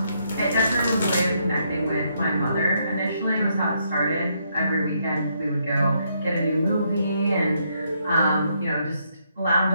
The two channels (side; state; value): both; inverted; correlation -0.75